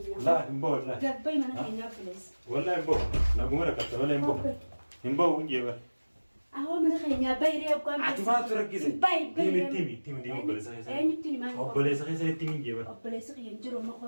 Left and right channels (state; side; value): inverted; both; correlation -1.00